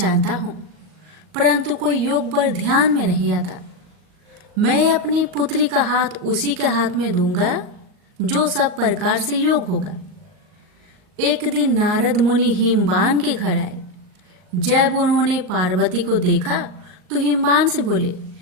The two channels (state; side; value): late; left; 38 ms